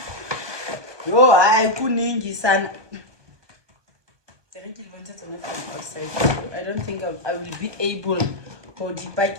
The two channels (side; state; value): left; late; 1.2 ms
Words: I couldn't son. I don't think I will be able